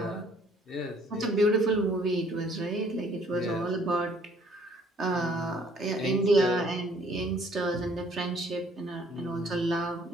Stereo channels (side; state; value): both; normal; correlation 0.60